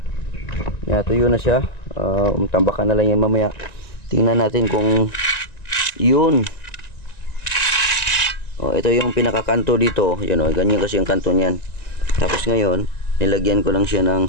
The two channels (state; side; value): late; right; 1.9 ms